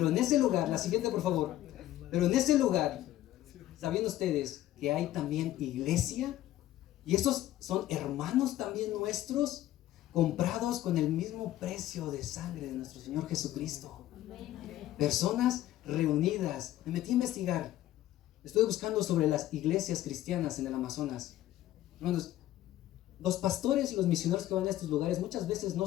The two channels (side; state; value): right; quieter; 14.1 dB